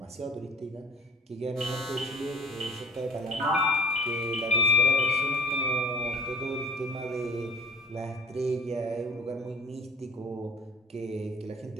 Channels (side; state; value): both; normal; correlation 0.48